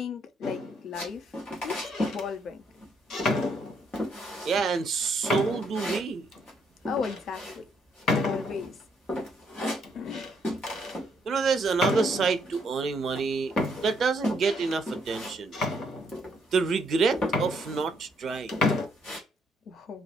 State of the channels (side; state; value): both; normal; correlation 0.71